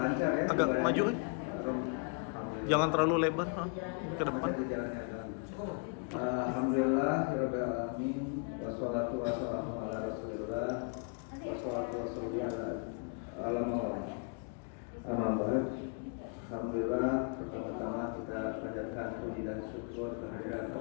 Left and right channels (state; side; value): quieter; right; 38.6 dB